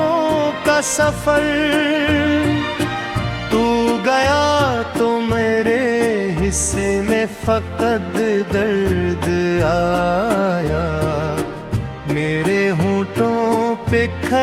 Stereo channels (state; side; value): identical; both; correlation 1.00